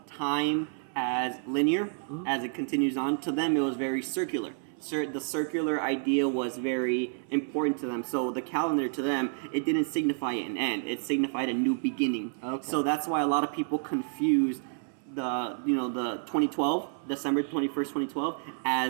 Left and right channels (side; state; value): left; silent; 58 dB below the other